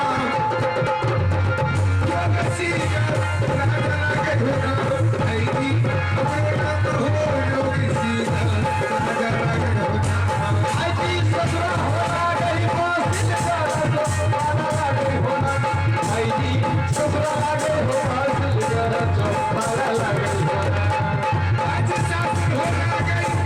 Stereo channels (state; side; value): identical; both; correlation 1.00